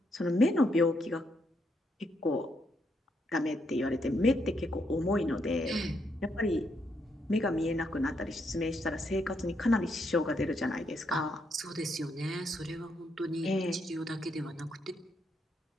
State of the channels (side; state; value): both; normal; correlation 0.77